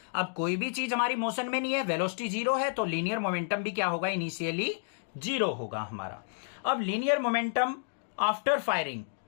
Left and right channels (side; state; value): right; silent; digital silence